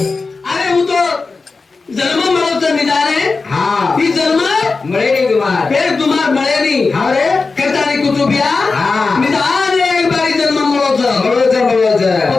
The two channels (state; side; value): quieter; right; 4.1 dB